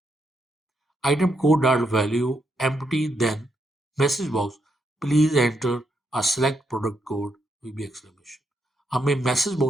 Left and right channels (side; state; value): both; normal; correlation 0.79